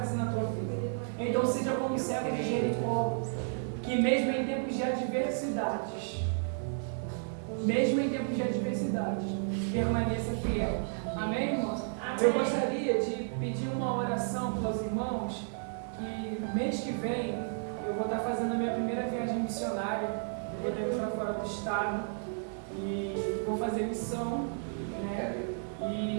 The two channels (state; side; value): silent; left; digital silence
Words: na tua vida. Então seja como o servo de Jericó, que mesmo em tempos de adversidades, permaneça fiel. Amém, irmãos? Amém. Eu gostaria de pedir uma oração para os irmãos, que mês que vem eu vou estar fazendo a minha primeira viagem missionária. Eu vou ter para fora do estado e vou fazer missão, né?